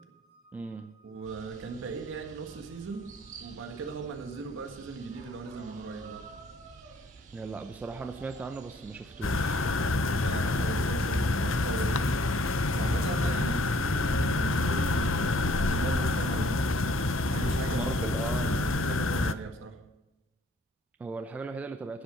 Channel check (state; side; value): normal; both; correlation 0.60